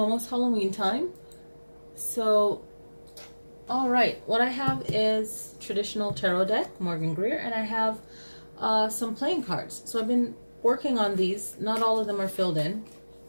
Halloween time. So, all right, what I have is traditional tarot deck, Morgan Greer, and I have some playing cards. So I've been working on these. Not all of them are filled in,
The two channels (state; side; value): inverted; both; correlation -1.00